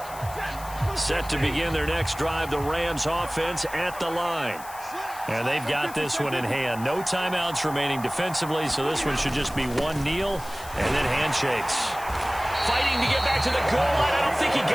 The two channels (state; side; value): noise; left; hiss, 16 dB below the sound